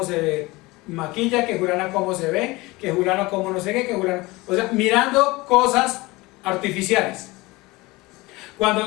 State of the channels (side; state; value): right; quieter; 22.0 dB